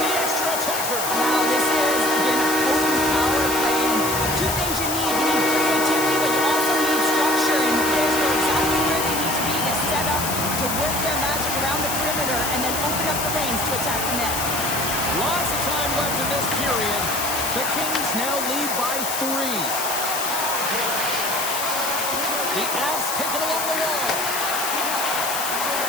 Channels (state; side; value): noise; left; hiss, 3 dB below the sound